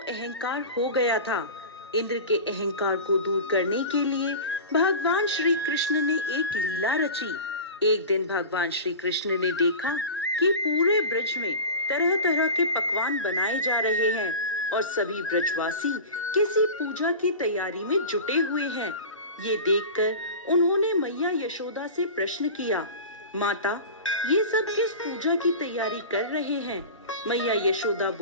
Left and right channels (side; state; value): both; inverted; correlation -0.32